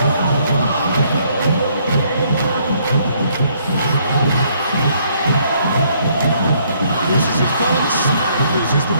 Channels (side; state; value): both; inverted; correlation -0.67